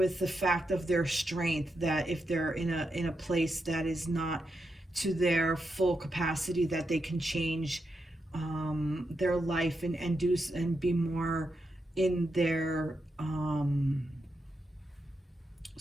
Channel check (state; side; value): normal; both; correlation 0.85